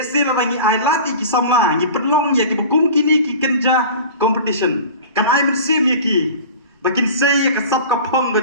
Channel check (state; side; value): inverted; both; correlation -0.38